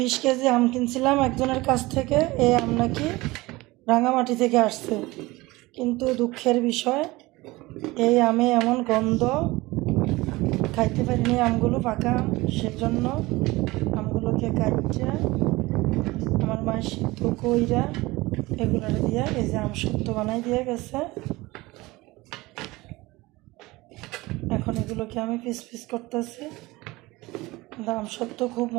KG আম কিনছিলাম একজনের কাছ থেকে। এই আম নাকি রাঙামাটি থেকে আসছে, কিন্তু দুঃখের বিষয় এই আমে এমন গন্ধ, খাইতে পারিনি আমগুলো পাকা আম। সেজন্য আমগুলোকে কাটছে আমার মায়ের সিদ্ধ কইরা এগুলোর দিয়ে এই যে আম সত্য বানাই দিয়ে গেছে। এখন এগুলোকে আমি পিস পিস করতেছি। আম সত্য খুব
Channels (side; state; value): left; quieter; 20.8 dB